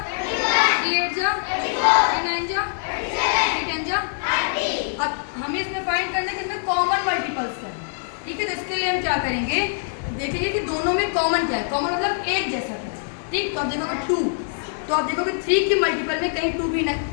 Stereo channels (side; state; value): right; silent; digital silence